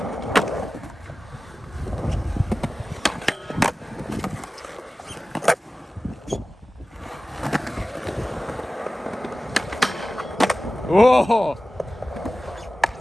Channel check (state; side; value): normal; both; correlation 0.96